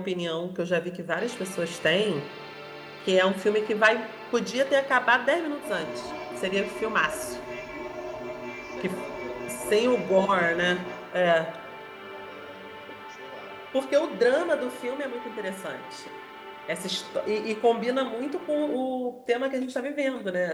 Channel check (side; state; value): both; identical; correlation 1.00